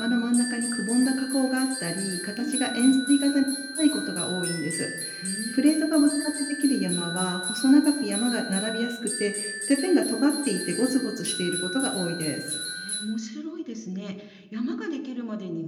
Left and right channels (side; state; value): both; identical; correlation 1.00